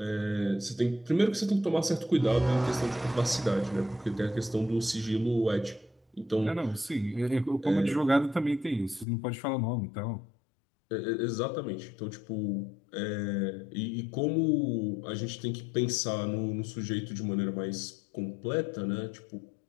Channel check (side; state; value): right; drops out; at 9.1 s